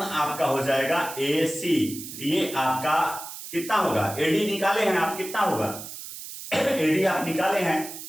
आपका हो जाएगा AC। ये आपका कितना होगा, AD निकाले हैं आप, कितना होगा AD आप निकाले हैं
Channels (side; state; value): right; noise; hiss, 11 dB below the sound